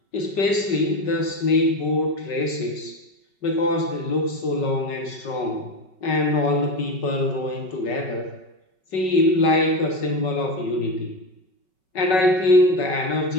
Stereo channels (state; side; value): late; right; 5.3 ms